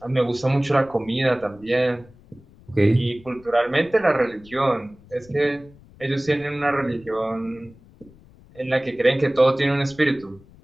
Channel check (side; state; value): left; noise; rumble, 25 dB below the sound